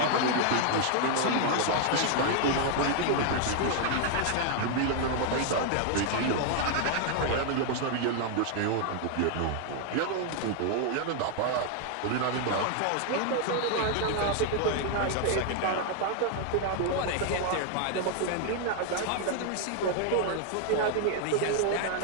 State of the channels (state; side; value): different; both; correlation 0.00